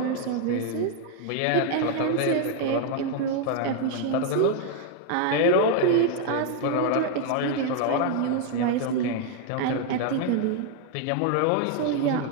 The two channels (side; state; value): both; different; correlation 0.00